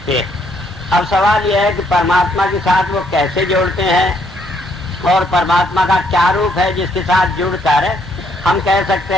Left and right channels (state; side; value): normal; both; correlation 0.70